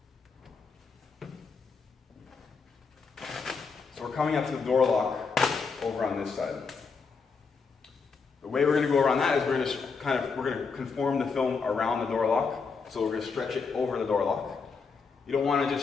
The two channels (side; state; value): right; quieter; 5.1 dB